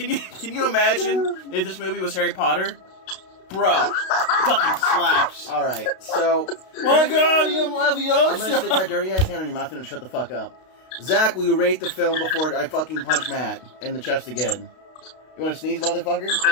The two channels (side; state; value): right; late; 32 ms